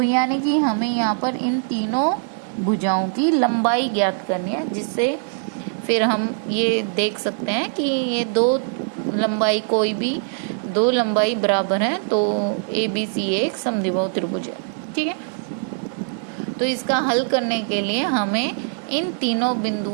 यानी कि हमें यहाँ पर इन तीनों भुजाओं की लंबाई ज्ञात करनी है, जिससे फिर हम ये देख सकते हैं कि ये 2 लंबाई कोई भी 2 लंबाई बराबर है तो ABC एक समद्विबाहु त्रिभुज है, ठीक है। तो इसका हल करने के लिए हमें इन तीनों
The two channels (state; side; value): silent; left; digital silence